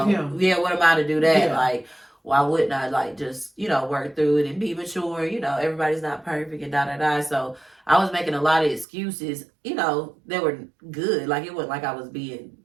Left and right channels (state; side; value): drops out; left; at 8.8 s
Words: am I to do that? Yeah. Like, why wouldn't I like just work through it and be mature? Everybody's not perfect and da. So I was making a lot of excuses. They were good. Like, it wasn't like I was being